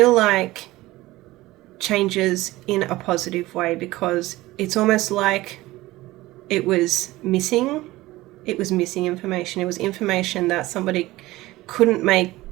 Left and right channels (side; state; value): left; quieter; 18.3 dB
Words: like changes in a positive way, because it's almost like it was missing information. It was information that somebody couldn't make,